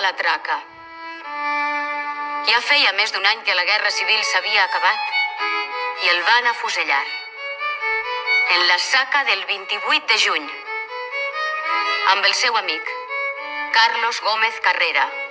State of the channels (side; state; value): both; identical; correlation 1.00